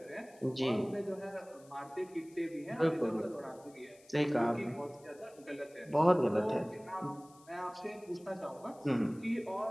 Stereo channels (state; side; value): noise; left; hiss, 26 dB below the sound